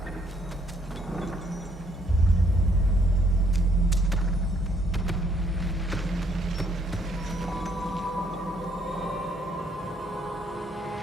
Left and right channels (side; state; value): both; normal; correlation 0.68